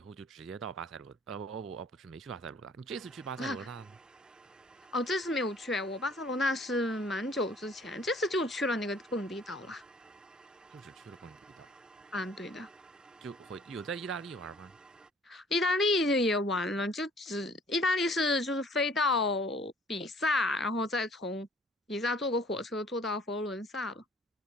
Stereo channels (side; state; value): both; normal; correlation 0.56